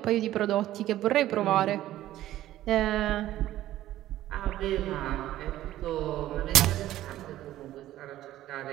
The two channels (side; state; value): left; quieter; 14.1 dB